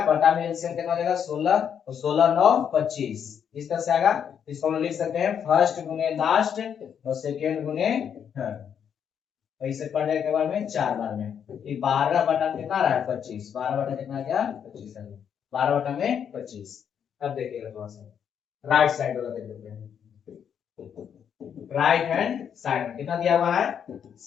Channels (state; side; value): quieter; right; 8.1 dB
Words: बटा में एलसीएम कितना हो जाएगा 16, तो 16 9 25 इस तरह से आएगा। इसको हम लोग लिख सकते हैं फर्स्ट गुने लास्ट और सेकेंड गुने थर्ड। ऐसे पढ़ जाएगा के बार में 4 बार में, ये 12 बटा में कितना रहा है 25, 12 बटा कितना आ गया 25 आ गया, 12 बटा में 25। अब देखिएगा थोड़ा सा राइट साइड वाला देख लेते हैं। राइट हैंड साइड में कितना दिया हुआ है